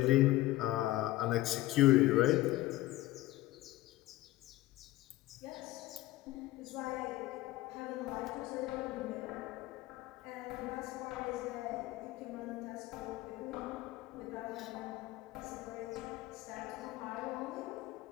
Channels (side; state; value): right; quieter; 16.9 dB